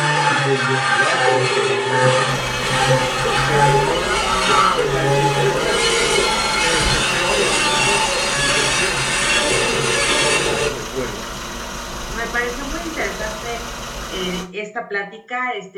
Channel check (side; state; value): both; identical; correlation 1.00